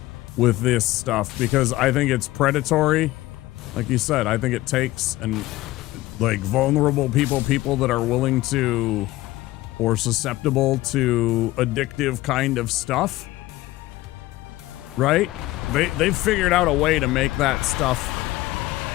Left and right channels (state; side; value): quieter; right; 17.5 dB